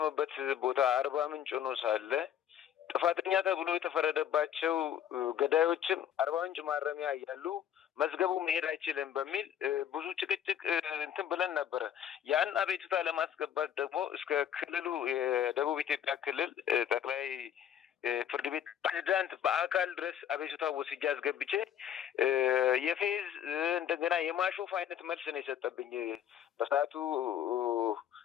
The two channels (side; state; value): right; quieter; 9.9 dB